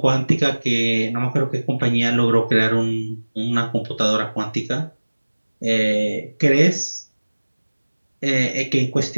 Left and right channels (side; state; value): both; inverted; correlation -1.00